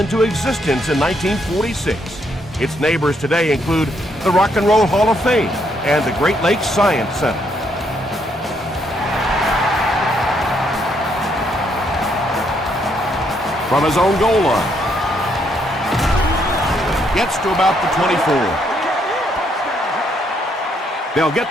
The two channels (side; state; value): both; normal; correlation 0.73